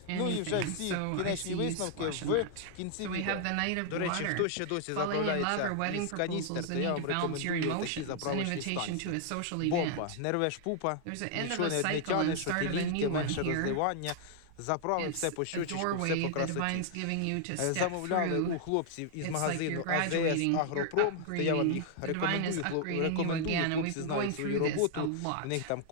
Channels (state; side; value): different; both; correlation 0.00